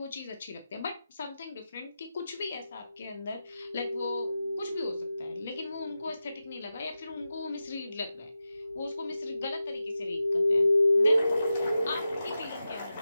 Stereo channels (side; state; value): both; inverted; correlation -0.92